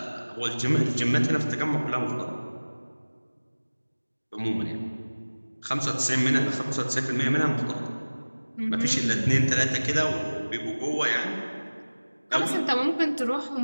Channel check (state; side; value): inverted; both; correlation -1.00